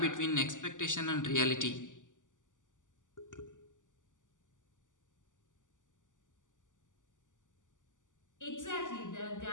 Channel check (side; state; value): right; late; 0.87 ms